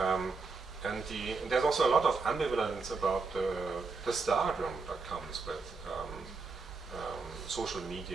And there's also a lot of ambivalence about the stardom that comes with social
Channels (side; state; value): left; quieter; 4.3 dB